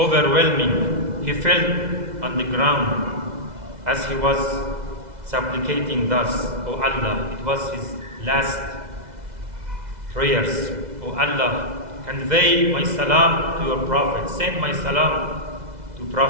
he fell on the ground as he was supplicating thus, "O Allah," it was his last prayers, "O Allah, convey my salam to your Prophet, send my salam to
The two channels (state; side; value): late; left; 2.0 ms